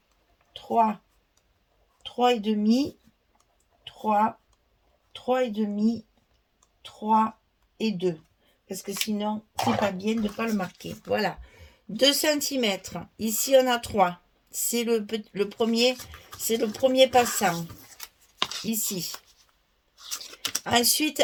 3, 3,5, 3, 3,5, 3 et 2. Parce que sinon, c'est pas bien de ne pas le marquer. Voilà. 2 cm. Ici, on a 3. C'est le premier, c'est le premier passant. Ici. Ensuite,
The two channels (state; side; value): identical; both; correlation 1.00